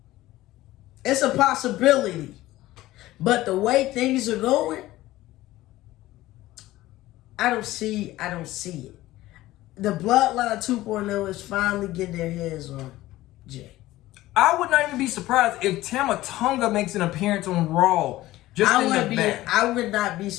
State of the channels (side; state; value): right; quieter; 16.6 dB